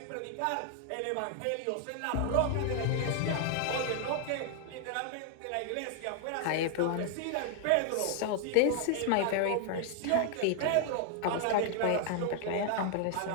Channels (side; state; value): both; different; correlation 0.00